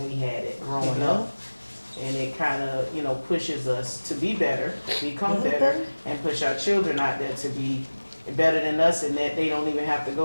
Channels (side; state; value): both; inverted; correlation -1.00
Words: we had it growing Yeah. up. And it kind of, pushes us to be better, become better, and push our children out there to be better than us, and that they don't even have to